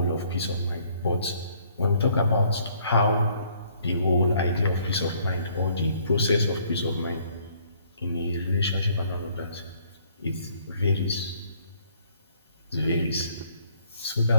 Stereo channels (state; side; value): inverted; both; correlation -0.64